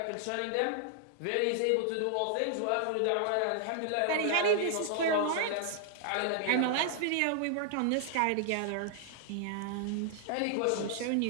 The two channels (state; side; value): different; both; correlation -0.01